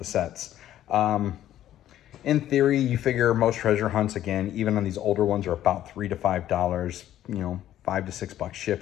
sets. In theory, you figure most treasure hunts, again, even on these older ones, are about $3 to $5, you know, $5 to $6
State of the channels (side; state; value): right; quieter; 12.3 dB